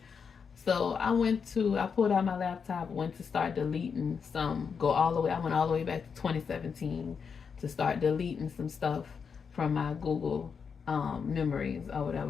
So I pulled out my laptop, went to start deleting I went all the way back to 2017 to start deleting some stuff from my Google memories or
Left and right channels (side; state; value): right; quieter; 6.2 dB